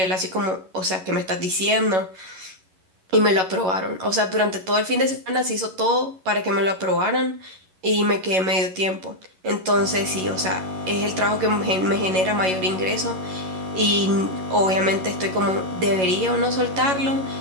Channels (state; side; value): late; left; 11 ms